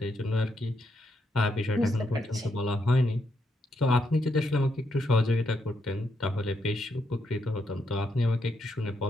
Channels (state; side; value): normal; both; correlation 0.79